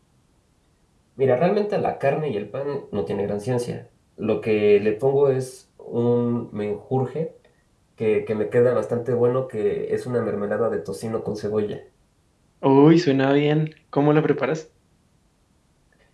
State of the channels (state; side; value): identical; both; correlation 1.00